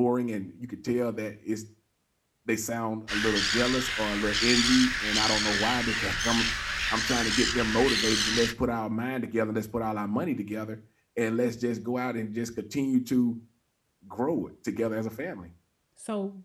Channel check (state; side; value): identical; both; correlation 1.00